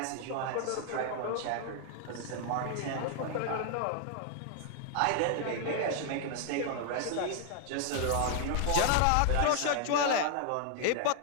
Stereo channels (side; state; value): both; different; correlation 0.00